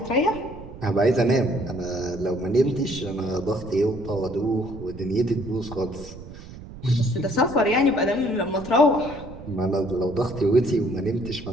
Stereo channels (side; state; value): right; noise; rumble, 15 dB below the sound